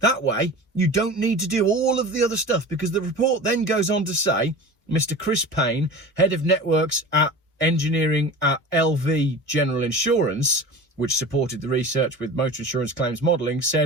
way, you don't need to do all of the other stuff, because the report then goes on to say, Mr. Chris Payne, head of networks at engineering at LV General Insurance, which supported the research with motor insurance claims modelling,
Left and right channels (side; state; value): both; normal; correlation 0.35